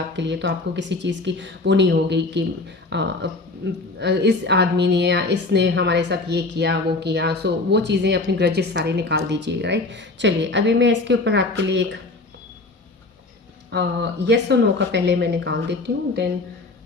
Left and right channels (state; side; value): quieter; right; 3.3 dB